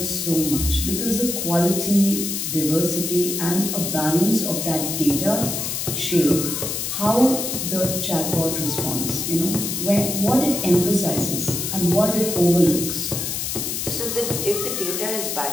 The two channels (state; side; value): noise; left; hiss, 3 dB below the sound